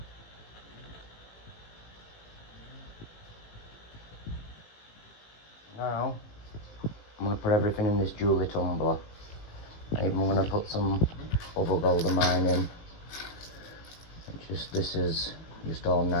Now I'm going to put everything in this jewellery tumbler. I'm going to put some other gold of mine in. This is just all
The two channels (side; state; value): right; late; 19 ms